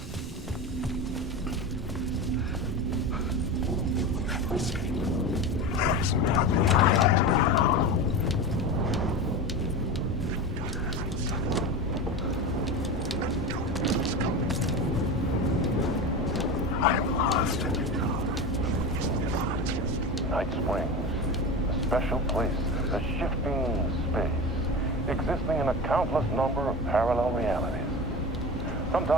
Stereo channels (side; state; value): both; normal; correlation 0.26